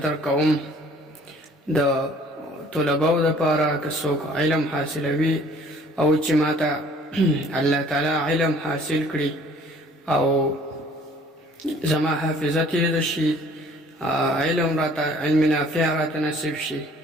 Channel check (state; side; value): normal; both; correlation 0.55